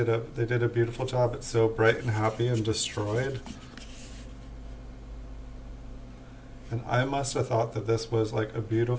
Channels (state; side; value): identical; both; correlation 1.00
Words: a beautiful job. It's so bright and happy and destroyed. And I must have thought that this was like a